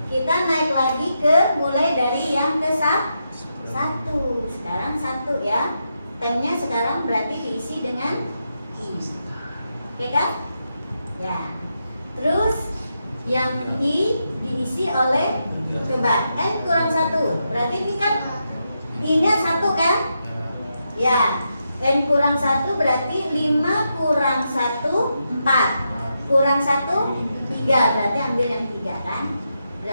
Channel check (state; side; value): inverted; both; correlation -0.85